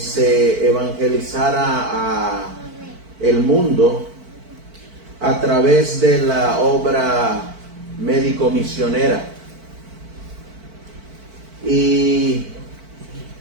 evangelizara a el mundo a través de la obra médico-misionera. Y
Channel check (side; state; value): left; late; 4.5 ms